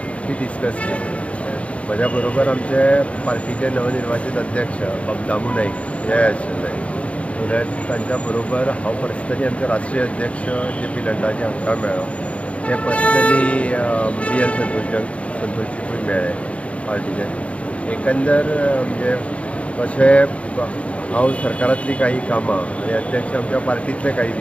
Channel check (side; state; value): right; late; 0.064 ms